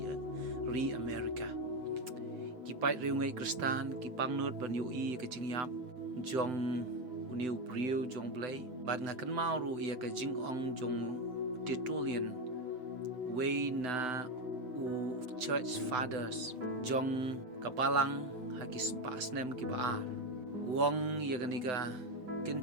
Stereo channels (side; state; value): left; late; 7.9 ms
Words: America ki pai riu ngai kristan ki pangnut ban yo i ka jing yap jong uniu brio jong blai bat nga kan mau ru ya ka jing ong jong titulian way na u church fathers jong kapalang hagis pasnem ki baar wong ya ganiga